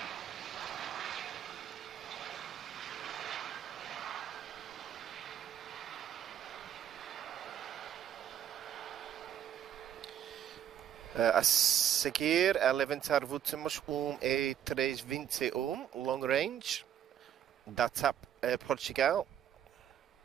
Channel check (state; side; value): quieter; left; 10.0 dB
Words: A seguir, a levantar últimos 3:21, long range, da TAP Portugal,